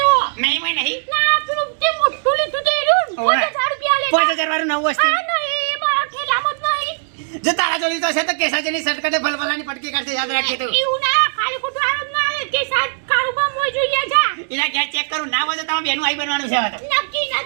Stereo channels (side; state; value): left; silent; digital silence